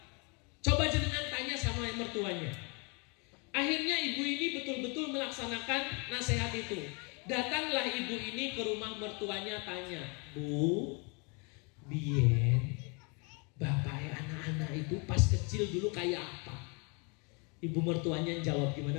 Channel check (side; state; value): right; quieter; 32.9 dB